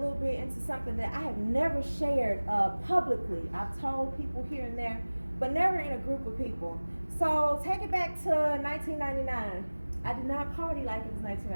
bit into something that I have never shared publicly. I've told people here and there, but never in a group of people. So take it back to 1999. I did not party like it was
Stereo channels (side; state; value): both; inverted; correlation -1.00